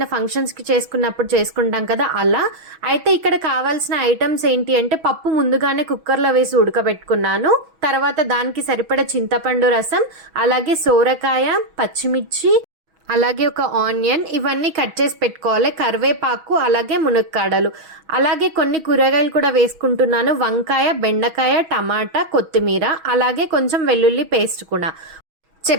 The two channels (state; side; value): late; left; 6.2 ms